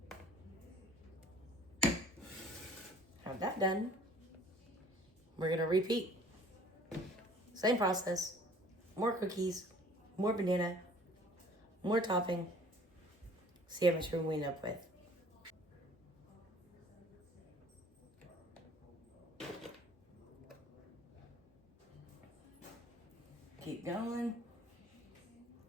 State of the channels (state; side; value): normal; both; correlation 0.52